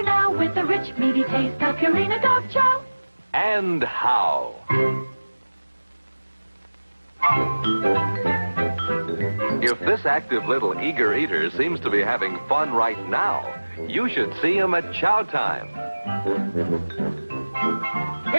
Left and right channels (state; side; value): inverted; both; correlation -1.00